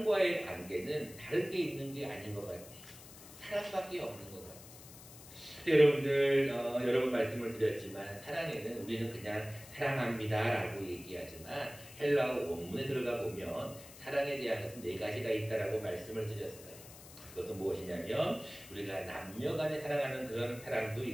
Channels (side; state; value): left; noise; hiss, 17 dB below the sound